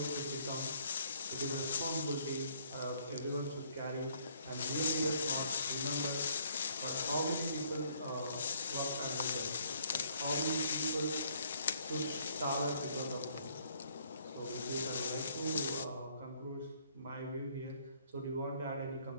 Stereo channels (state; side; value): inverted; both; correlation -0.65